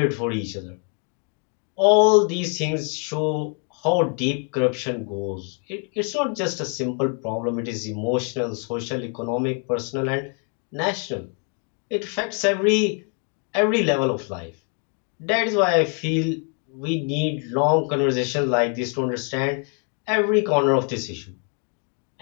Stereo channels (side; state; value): right; quieter; 39.1 dB